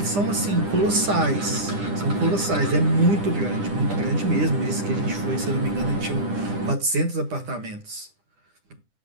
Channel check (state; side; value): late; left; 10 ms